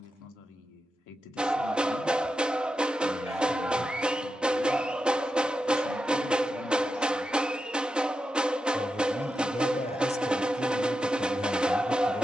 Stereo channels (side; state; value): both; normal; correlation 0.89